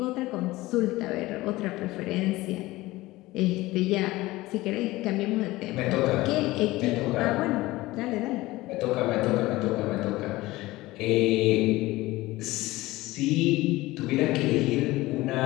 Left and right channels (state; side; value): quieter; right; 18.9 dB